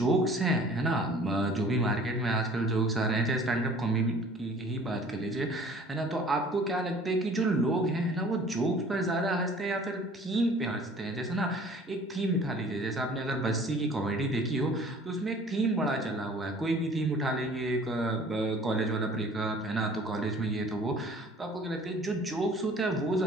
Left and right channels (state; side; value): normal; both; correlation 0.50